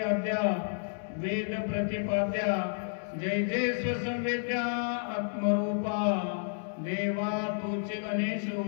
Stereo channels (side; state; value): right; silent; 57 dB below the other